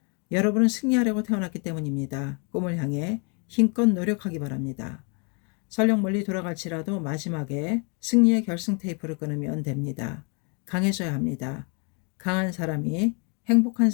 여러분은 승리하려고 태어났기 때문입니다. 꿈을 향해 힘껏 노력하기 바랍니다. 설령 멀리 돌아갈지라도 마지막에 승리의 결승 테이프를 끊으면 됩니다. 강해져야 합니다. 강한 사람이 행복한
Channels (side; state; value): right; quieter; 35.6 dB